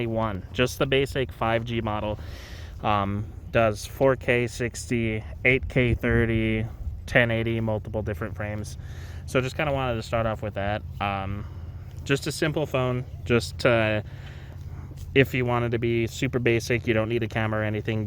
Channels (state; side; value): identical; both; correlation 1.00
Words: just the basic 5G model. Does 4K 60, 8K 30, 1080, multiple different frames. So just kind of wanted to start off with that. Just a simple phone, just to, if you wanted to be super basic, you don't need a camera or anything,